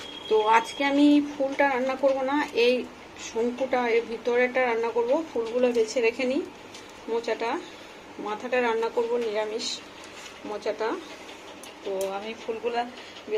তো আজকে আমি ফুলটা রান্না করব না, এই শঙ্কুটা এর ভিতরেটা রান্না করব। ফুলগুলো বেছে রেখে নিই, মোচাটা মাথাটা রান্না করব নিরামিষ মোচাটা। তো আমি ফুলগুলা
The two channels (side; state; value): both; identical; correlation 1.00